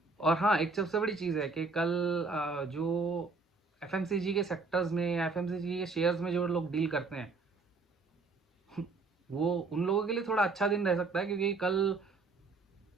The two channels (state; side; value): quieter; left; 3.9 dB